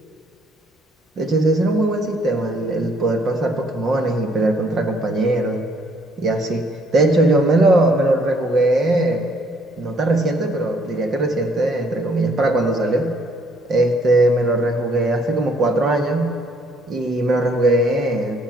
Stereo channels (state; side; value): normal; both; correlation 0.65